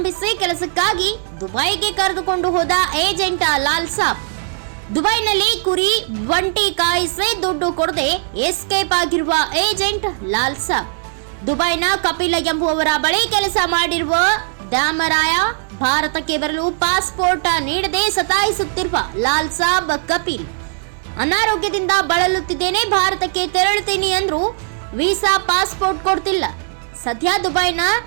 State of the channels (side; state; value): left; silent; 67 dB below the other